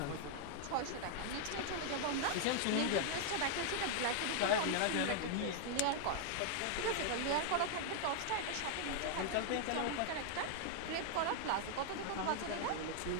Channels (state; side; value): different; both; correlation 0.00